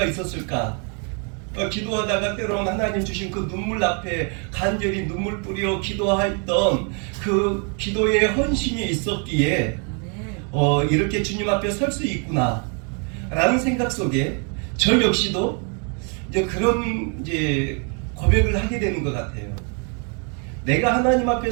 있었을까. 기도하다가 때로는 하나님 주신 그 눈물 앞에 간절히 눈물 뿌려 기도했던 그 기도의 헌신이 있었기에 이렇게 주님 앞에 설 수 있구나 라는 생각 속에 저 역시도 이제 그런 이제 고백을 하게 되는 것 같아요. 내가 하나님 앞에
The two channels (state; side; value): quieter; left; 38.2 dB